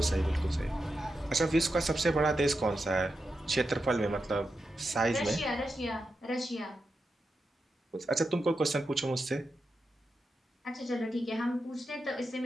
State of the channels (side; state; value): both; normal; correlation 0.88